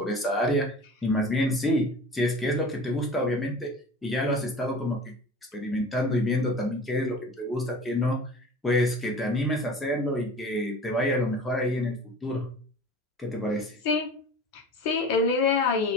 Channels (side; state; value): both; normal; correlation 0.39